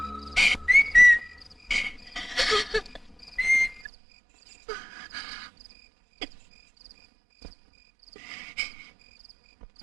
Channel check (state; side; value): drops out; left; at 3.9 s